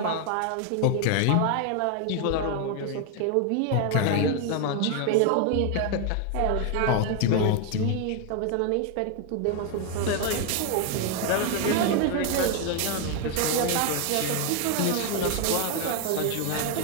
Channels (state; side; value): different; both; correlation 0.01